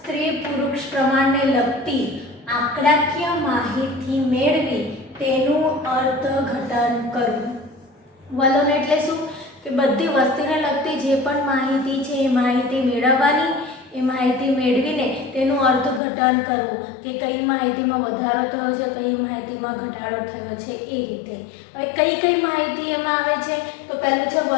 પુરુષ પ્રમાણને લગતી આંકડાકીય માહિતી મેળવી તેનું અર્થઘટન કરવું। વલણ એટલે શું કે બધી વસ્તીને લગતી જે પણ માહિતી છે એ માહિતી મેળવવાની, એ માહિતી મેળવીને તેનું અર્થઘટન કરવું કે કઈ માહિતીમાં વધારો થયો છે, કઈ માહિતીમાં ઘટાડો થયો છે, એ રીતે। હવે કઈ માહિતી એમાં આવે છે? તો પહેલું છે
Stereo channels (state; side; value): drops out; right; at 16.0 s